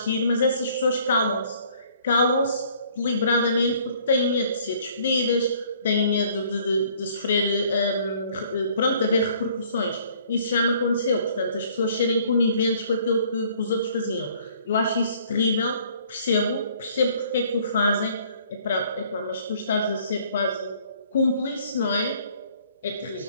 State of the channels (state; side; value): inverted; both; correlation -0.59